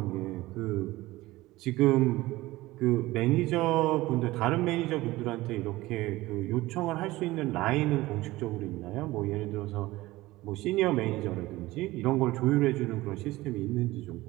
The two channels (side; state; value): left; quieter; 18.5 dB